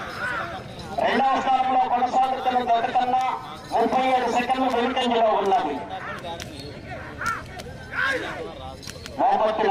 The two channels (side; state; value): both; identical; correlation 1.00